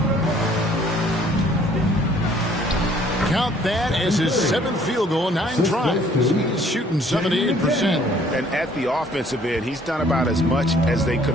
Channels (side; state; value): both; normal; correlation 0.59